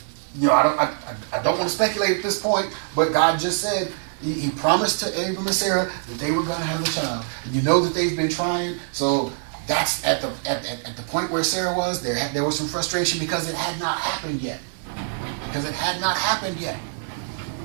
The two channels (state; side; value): silent; left; 58 dB below the other